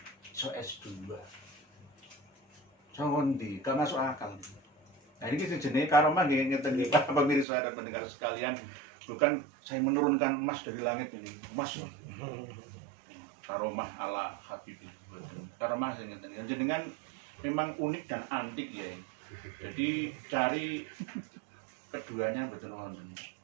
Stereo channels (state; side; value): drops out; left; at 7.5 s